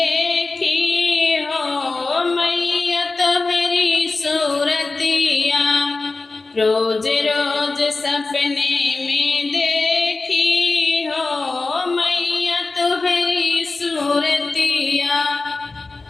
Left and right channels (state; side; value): quieter; right; 3.6 dB